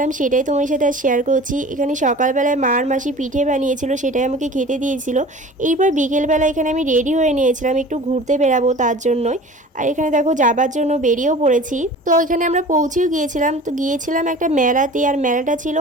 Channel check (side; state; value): both; normal; correlation 0.41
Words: সেটাই তোমার সাথে আজ শেয়ার করছি। এখানে সকালবেলায় মার মাসি পিঠে বানিয়েছিল, সেটাই আমাকে খেতে দিয়েছিল। এইবার বিকেলবেলা এখানে আমি রেডি হয়ে নিয়েছিলাম, একটু ঘুরতে বেরাবো তার জন্যই। আর এখানে দেখো যাবার জন্য বেরিয়েও পড়েছি। তো এখানে আমরা পৌঁছেও গিয়েছিলাম। তো গিয়েছিলাম একটা মেলাতে, আর মেলাটা ছিল